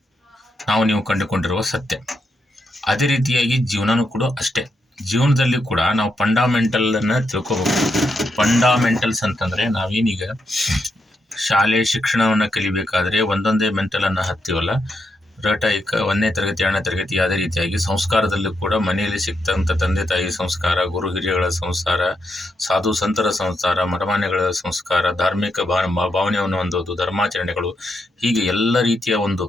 ನೀವು ಕಂಡುಕೊಂಡಿರುವ ಸತ್ಯ. ಅದೇ ರೀತಿಯಾಗಿ ಜೀವನನೂ ಕೂಡ ಅಷ್ಟೇ. ಜೀವನದಲ್ಲಿ ಕೂಡ ನಾವು ಫಂಡಾಮೆಂಟಲನ್ನು ತಿಳ್ಕೋಬೇಕು. ಫಂಡಾಮೆಂಟಲ್ಸ್ ಅಂತಂದರೆ ನಾವೇನೀಗ ಶಾಲೆ ಶಿಕ್ಷಣವನ್ನು ಕಲಿಬೇಕಾದ್ರೆ ಒಂದೊಂದೇ ಮೆಂಟಲನ್ನು ಹತ್ತೀವಲ್ಲ, ರಟಾಯಿಕ 1ನೇ ತರಗತಿ 2ನೇ ತರಗತಿ. ಅದೇ ರೀತಿಯಾಗಿ ಸಂಸ್ಕಾರದಲ್ಲೂ ಕೂಡ ಮನೆಯಲ್ಲಿ ಸಿಗ್ತಂಥ ತಂದೆ ತಾಯಿ ಸಂಸ್ಕಾರ, ಗುರು ಹಿರಿಯಗಳ ಸಂಸ್ಕಾರ, ಸಾಧು ಸಂತರ ಸಂಸ್ಕಾರ, ಮಠಮಾನ್ಯಗಳ ಸಂಸ್ಕಾರ, ಧಾರ್ಮಿಕ ಭಾವನೆಯನ್ನು ಹೊಂದೋದು, ಧರ್ಮಾಚರಣೆಗಳು, ಹೀಗೆ ಎಲ್ಲ ರೀತಿಯ ಒಂದು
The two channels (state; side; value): normal; both; correlation 0.82